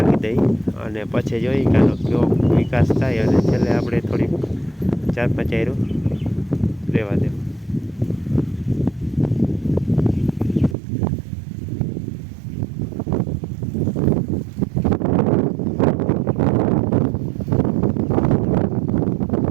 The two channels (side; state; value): left; drops out; at 10.8 s